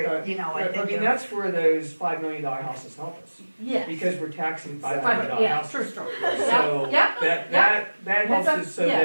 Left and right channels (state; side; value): inverted; both; correlation -1.00